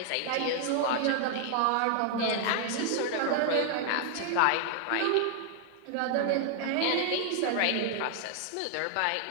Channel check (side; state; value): both; different; correlation 0.00